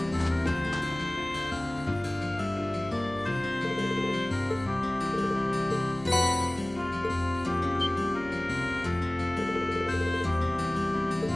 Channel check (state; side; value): noise; left; hum, 19 dB below the sound